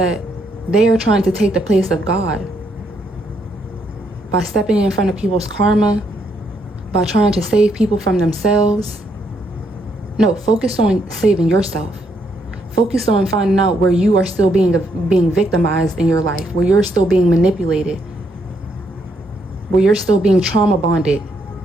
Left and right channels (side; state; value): both; normal; correlation 0.75